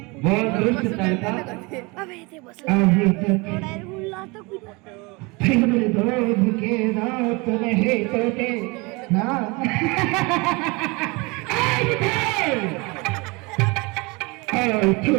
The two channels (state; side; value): quieter; left; 26.8 dB